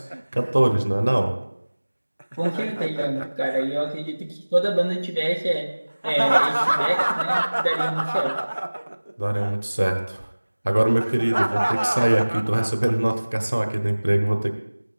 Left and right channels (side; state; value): both; inverted; correlation -1.00